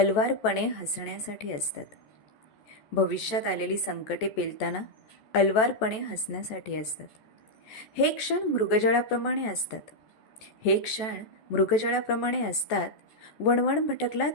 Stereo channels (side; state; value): right; late; 14 ms